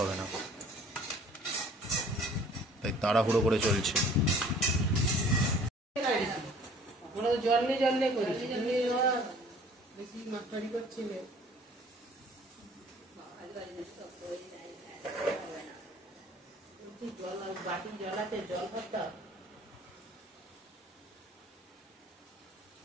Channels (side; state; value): both; normal; correlation 0.52